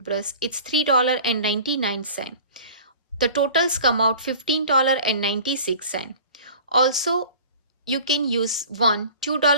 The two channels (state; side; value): inverted; both; correlation -0.43